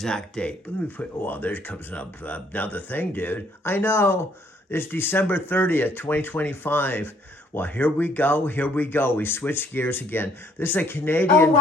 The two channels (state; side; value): normal; both; correlation 0.65